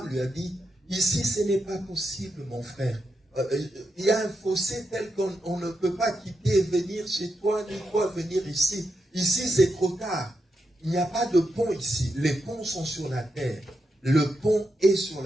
lui a dit, ici ce n'est pas possible mon frère. Il y a un fossé tel qu'on ne peut pas quitter et venir chez toi, ni toi venir ici. Ici c'est trop tard. Il n'y a pas de pont ici. Les ponts sont sur la terre. Le pont est sur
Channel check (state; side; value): normal; both; correlation 0.85